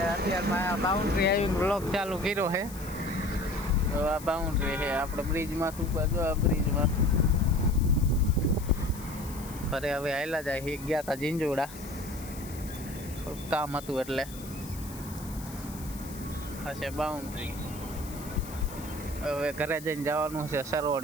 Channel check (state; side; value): noise; left; hiss, 16 dB below the sound